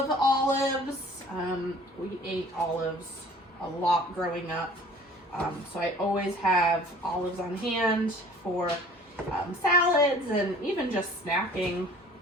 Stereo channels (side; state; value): both; normal; correlation 0.49